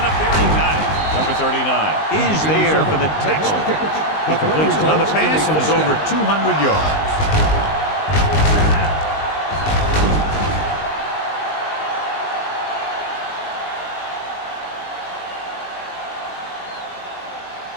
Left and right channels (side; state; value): right; late; 19 ms